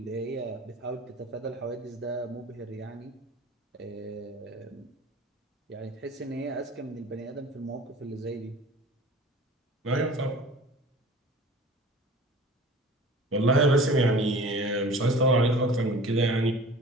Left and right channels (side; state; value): both; normal; correlation 0.42